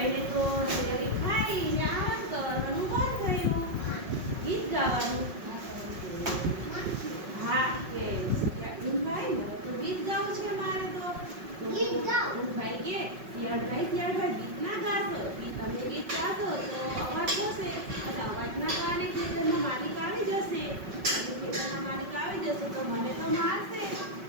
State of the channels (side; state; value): left; late; 5.4 ms